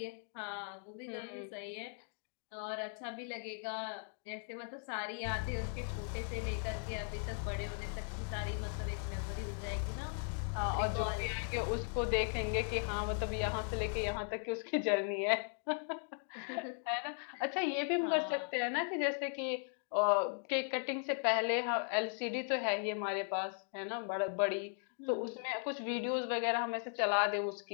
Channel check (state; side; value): silent; right; 52 dB below the other